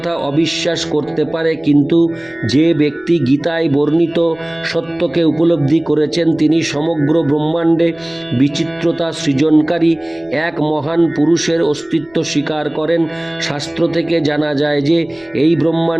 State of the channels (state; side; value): noise; left; rumble, 30 dB below the sound